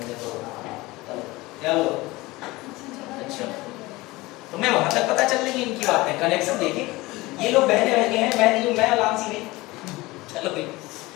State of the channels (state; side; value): quieter; right; 20.9 dB